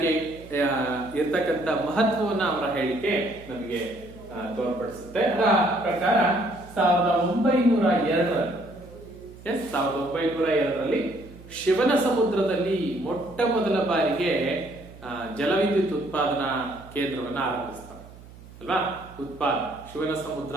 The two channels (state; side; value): noise; right; hum, 19 dB below the sound